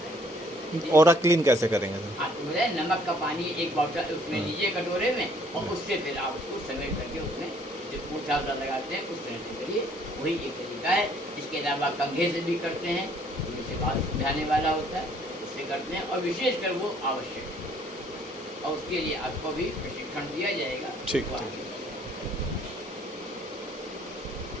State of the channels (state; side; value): normal; both; correlation 0.61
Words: देता है। ऑरा क्लीन कैसे करेंगे सर? आपको बताए नमक का पानी एक बॉटल उसमें लीजिए कटोरे में, और उससे फिर आप उसको समेट करके उसमें जो पूछा लगाते हैं उस तरह से करिए, वही एक तरीका है। इसके अलावा कंघे से भी करते हैं, जिससे बात समझाने वाला होता है, उससे करते हैं, और विशेषकर वो आवश्यक है, और उसके लिए आपको भी प्रशिक्षण दिया जाएगा। ठीक, वो ठीक। आगे